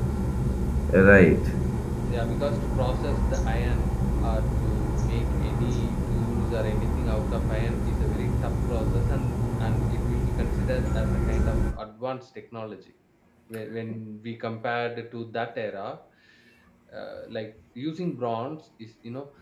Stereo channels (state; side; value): identical; both; correlation 1.00